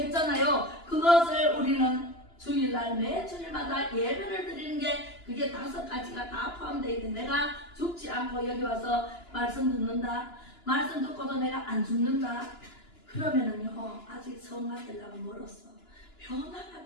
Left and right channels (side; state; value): right; late; 2.9 ms